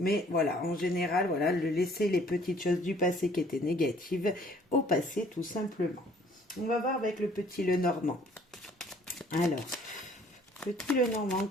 voilà, en général, voilà, le laisser les petites choses du passé qui étaient négatives au passé tout simplement. On va voir avec le petit Lenormand. Alors, petit Lenormand,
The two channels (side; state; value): both; normal; correlation 0.58